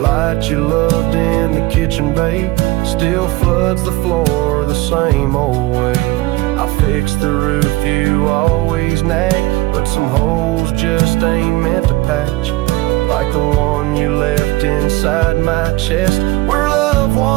you loved in the kitchen, babe, still floods the floor the same old way. I fixed the roof you always nag, but some holes just ain't meant to patch, like the one you left inside my chest, where love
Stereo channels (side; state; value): left; quieter; 19.5 dB